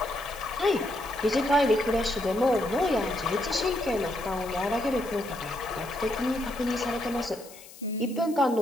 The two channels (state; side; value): noise; left; hiss, 19 dB below the sound